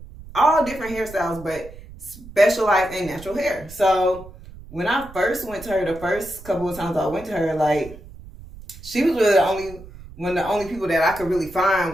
different hairstyles, but specialized in natural hair. So when I first went to her, the first couple of times I went to her, like, she was really one of the only people that I could really find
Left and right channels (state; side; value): noise; right; rumble, 17 dB below the sound